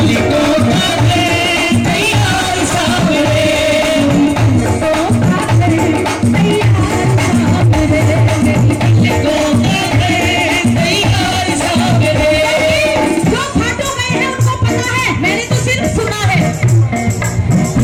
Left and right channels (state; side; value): identical; both; correlation 1.00